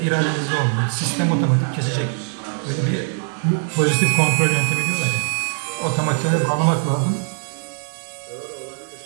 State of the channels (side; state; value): left; silent; 65 dB below the other